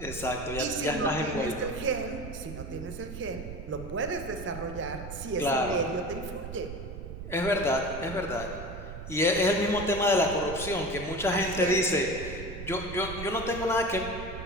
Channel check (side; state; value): right; noise; rumble, 10 dB below the sound